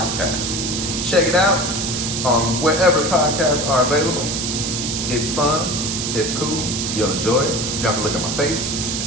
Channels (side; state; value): right; noise; hiss, 2 dB below the sound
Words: Check it out on wherever podcasts are available. It's fun. It's cool. You'll enjoy it. You don't have to look at my face.